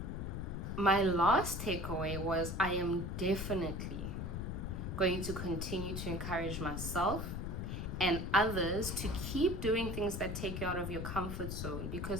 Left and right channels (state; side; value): noise; left; rumble, 4 dB below the sound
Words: my last takeaway was I am definitely going to continue to encourage myself and others to keep doing things that take you out of your comfort zone,